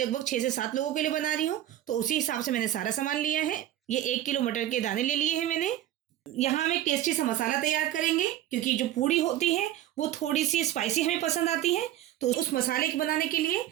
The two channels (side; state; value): left; quieter; 12.9 dB